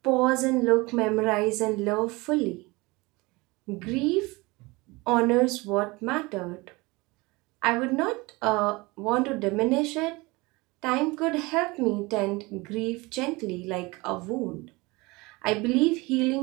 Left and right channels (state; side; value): quieter; left; 23.8 dB